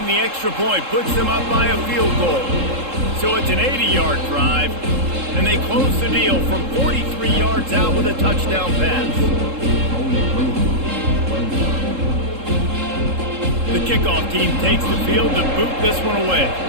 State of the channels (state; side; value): late; left; 3.7 ms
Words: the extra point puts them up by a field goal. So it's an 80-yard drive, and they close the deal from 43 yards out with a touchdown pass. The kickoff team takes the field to boot this one away.